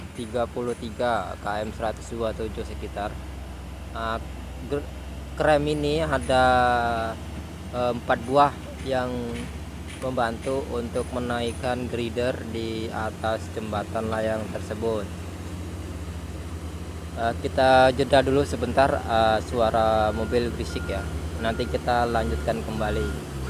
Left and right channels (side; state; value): both; identical; correlation 1.00